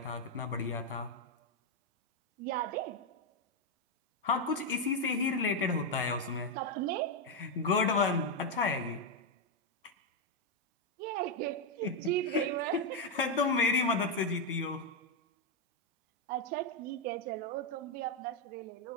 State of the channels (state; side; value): normal; both; correlation 0.03